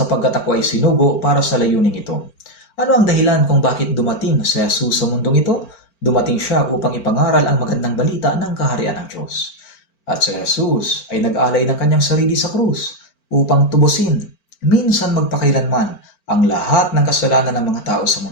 ako ay sinugo para sa layuning ito. Ano ang dahilan kung bakit dumating si Jesus sa mundong ito? Dumating siya upang ipangaral ang magandang balita ng kaharian ng Diyos. At si Jesus ay nag-alay ng kanyang sarili sa krus upang tubusin, minsan magpakailanman, ang lahat ng kasalanan ng mga tao sa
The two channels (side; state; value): right; late; 4.4 ms